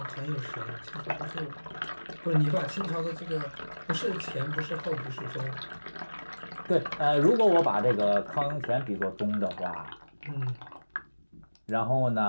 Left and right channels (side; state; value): both; inverted; correlation -1.00